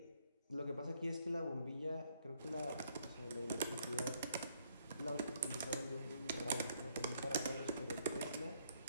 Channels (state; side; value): inverted; both; correlation -0.68